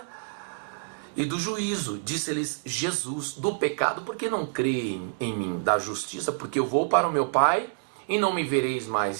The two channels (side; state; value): left; silent; digital silence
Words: e do juízo. Disse-lhes Jesus: do pecado, porque não creem em mim; da justiça, porque eu vou para o meu Pai e não me vereis mais;